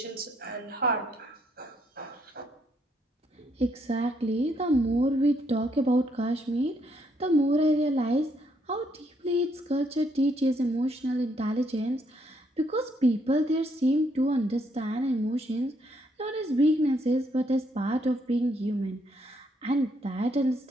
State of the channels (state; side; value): normal; both; correlation 0.72